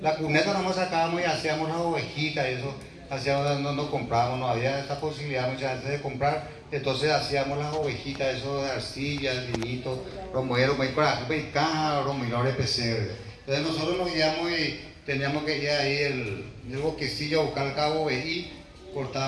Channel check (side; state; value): both; identical; correlation 1.00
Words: la cuneta, nomás sacábamos y hacíamos las ovejitas y eso, hacíamos, no comprábamos, no había esa posibilidad muchas veces de comprar, entonces hacíamos las ovejitas, eso de arcilla, el vinito, romero, y caja, romero de pesebre. Entonces nosotros nos guiamos y teníamos que ir ahí el bosquecillo a buscar el cabo ovejí,